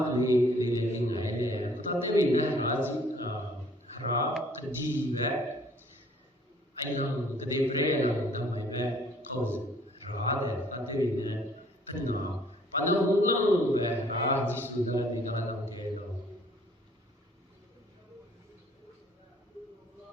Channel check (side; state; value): both; normal; correlation 0.58